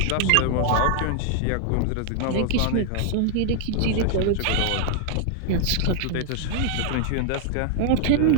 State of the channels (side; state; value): both; different; correlation 0.00